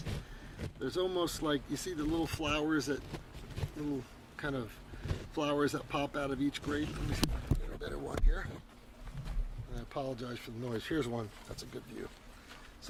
there's almost like, you see the little flowers little kind of flowers that pop out of each grape. Let me see if I can get a better one here. And I apologize for the noise. Here's one. That's a good view.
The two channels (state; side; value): identical; both; correlation 1.00